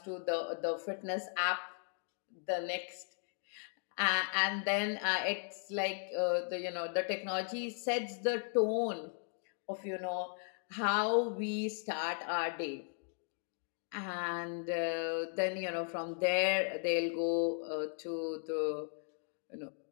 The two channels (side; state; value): right; silent; 53 dB below the other